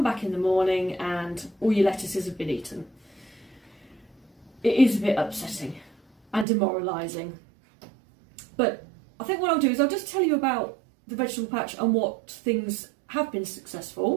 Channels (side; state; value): left; drops out; at 6.5 s